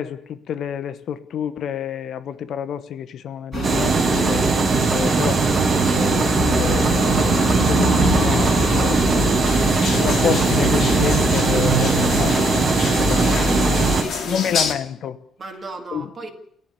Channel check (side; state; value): both; normal; correlation 0.73